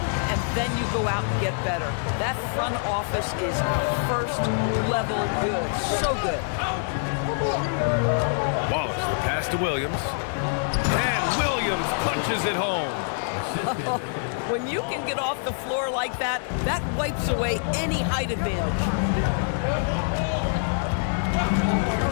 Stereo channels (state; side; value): silent; right; digital silence